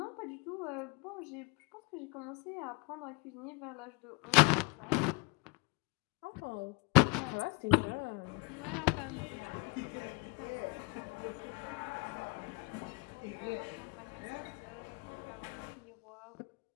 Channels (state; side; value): quieter; right; 30.7 dB